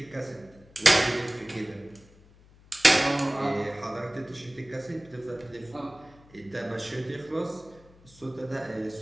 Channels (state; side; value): noise; left; hum, 25 dB below the sound